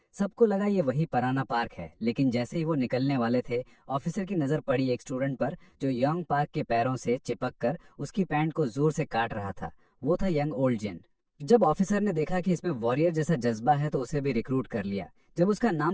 सबको लगा ये वही पुराना पार्क है, लेकिन जैसे ही वो निकलने वाले थे, ऑफिसर की नजर पड़ी एक स्टूडेंट पर जो यंग पार्क के पैरों से चिपक कर उसकी पैंट को जोर से काट रहा था। वो था यंग ओल्ड जिन। जब ऑफिसर ने देखा कि इसमें वॉरियर जैसा जज्बा है तो उसे भी रिक्रूट कर लिया। जब उसका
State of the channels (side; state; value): both; identical; correlation 1.00